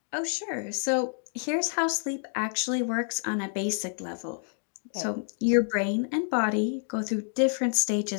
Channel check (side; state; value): right; silent; 59 dB below the other